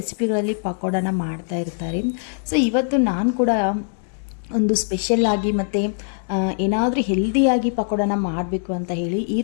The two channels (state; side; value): silent; right; 64 dB below the other